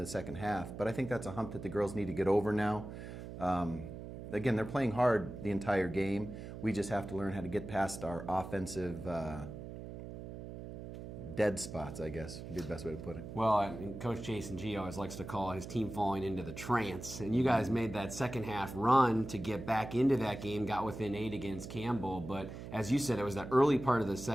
second half. But I think that's a hump that the girls need to get over now. Again, they're playing hard the entire game. We just have to learn how to get past our offensive dead spots, I guess, would be the best way to put it. Well, Coach Jason G always likes to call his team falling into the trance. And you guys made that second half run to get back into that game, got within 8 against Campbell. But as you said, it was that early part of the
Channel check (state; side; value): noise; right; hum, 10 dB below the sound